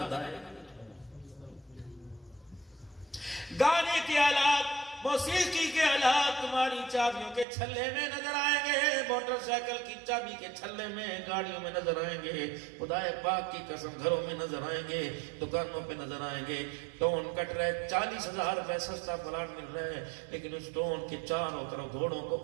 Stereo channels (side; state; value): left; drops out; at 7.5 s